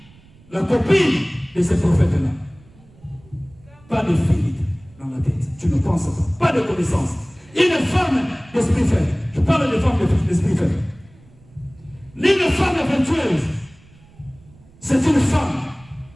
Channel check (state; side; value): noise; right; rumble, 26 dB below the sound